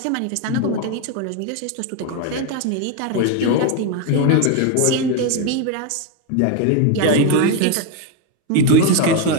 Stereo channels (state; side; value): different; both; correlation 0.02